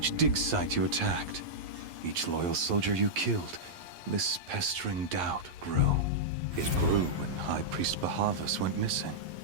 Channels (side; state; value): left; late; 11 ms